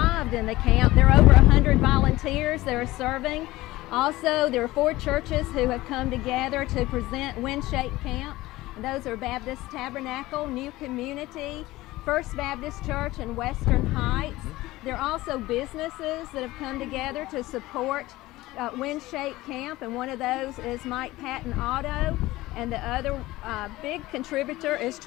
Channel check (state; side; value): quieter; right; 18.1 dB